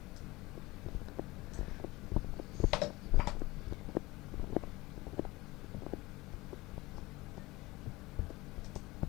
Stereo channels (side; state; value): right; quieter; 21.1 dB